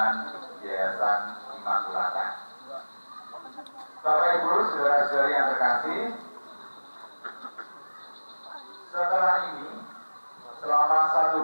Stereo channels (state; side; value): inverted; both; correlation -1.00